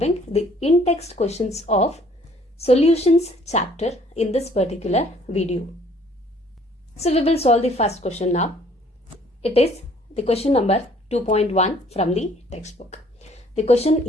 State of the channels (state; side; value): normal; both; correlation 0.60